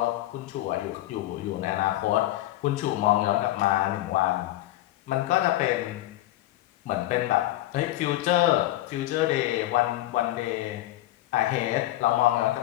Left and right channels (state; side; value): quieter; right; 15.5 dB